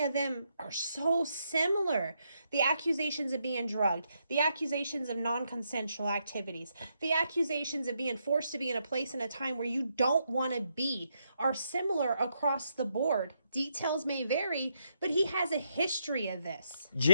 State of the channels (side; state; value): both; inverted; correlation -0.78